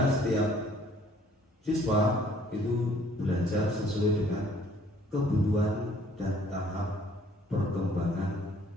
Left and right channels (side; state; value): both; normal; correlation 0.59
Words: setiap siswa itu belajar sesuai dengan kebutuhan dan tahap perkembangan